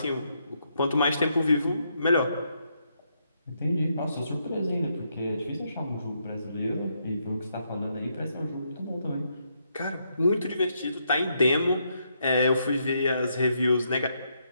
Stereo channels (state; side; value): inverted; both; correlation -0.78